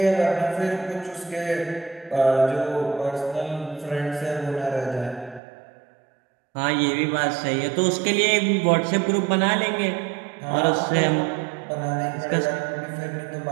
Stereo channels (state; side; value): drops out; left; at 5.4 s